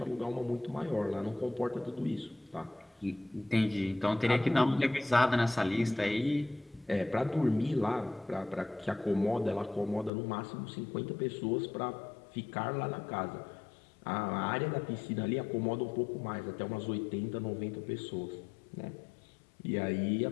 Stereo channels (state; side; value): drops out; right; at 10.1 s